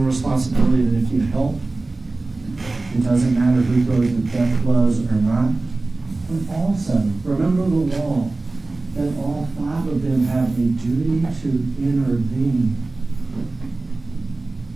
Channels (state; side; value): quieter; left; 3.3 dB